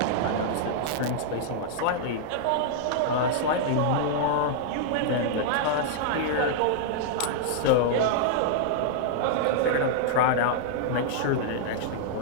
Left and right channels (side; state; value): both; different; correlation -0.01